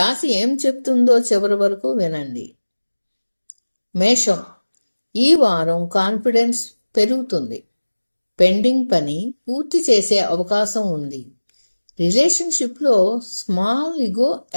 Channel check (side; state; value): both; inverted; correlation -1.00